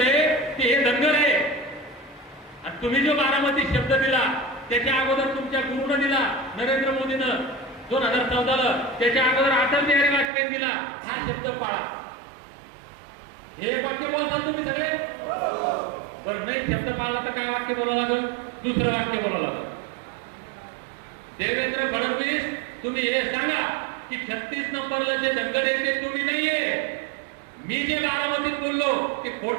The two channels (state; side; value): drops out; left; at 10.3 s